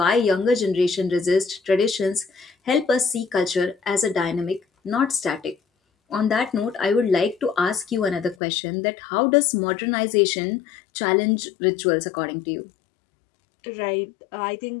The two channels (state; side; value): drops out; right; at 8.3 s